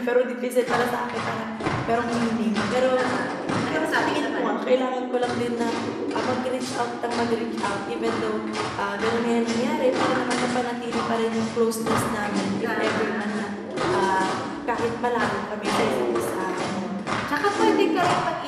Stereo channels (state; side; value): identical; both; correlation 1.00